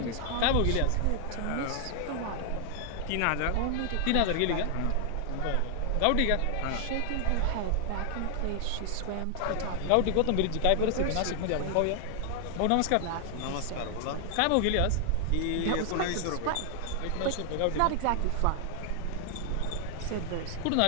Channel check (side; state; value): both; different; correlation 0.00